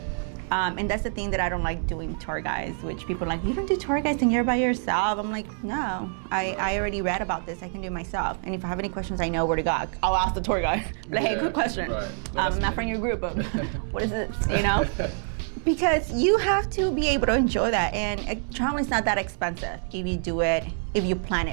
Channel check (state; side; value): silent; left; 56 dB below the other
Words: And that's the thing that I don't like doing tour guides, which people are like, you don't do tour guides and you're by yourself. I'm like, no, I already read about this. I can do it myself. And if I have any questions, I know where to go. I'll ask the tour guide. Like, hey, good question. Right. I'm not from your group, but what is it, you know? Because you have to be able to enjoy that. And traveling's not that expensive if you do it, if you plan